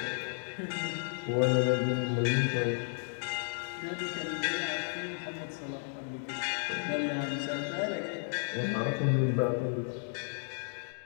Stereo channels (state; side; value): silent; right; digital silence